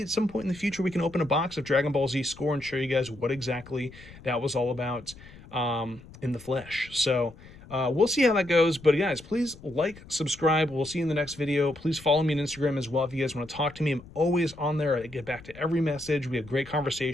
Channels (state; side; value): noise; left; rumble, 20 dB below the sound